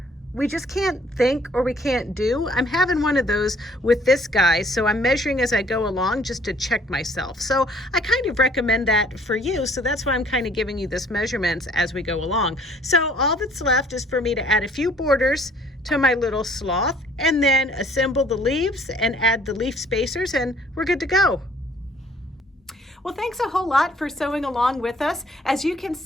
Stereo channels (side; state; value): both; normal; correlation 0.58